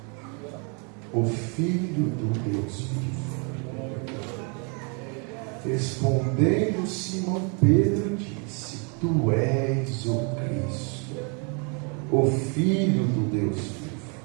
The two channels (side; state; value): left; quieter; 36.2 dB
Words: o Filho do Deus vivo. Respondendo, Simão Pedro disse: tu és o Cristo, o Filho do Deus vivo.